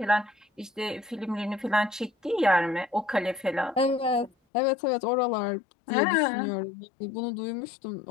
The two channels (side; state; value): right; drops out; at 4.3 s